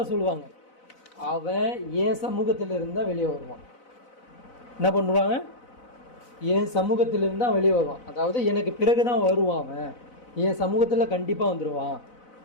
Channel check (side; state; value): right; late; 4.0 ms